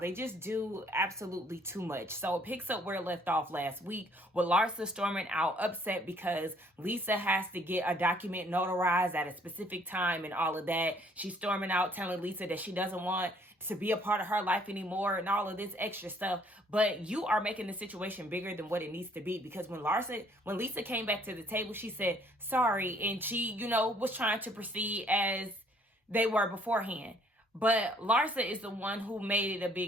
just do absolutely too much. So it picks up where it left off last week with Larsa storming out upset because Lisa has to get a document notarized at a specific time and all of that. She's storming out telling Lisa that she doesn't want to be a part of her life anymore and all of this extra stuff. But you are making the situation bigger than what it needs to be, because when Lisa came back to the table, she said sorry, and she, was trying to proceed as they were beforehand. But Larsa is the one who made it a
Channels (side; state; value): both; normal; correlation 0.62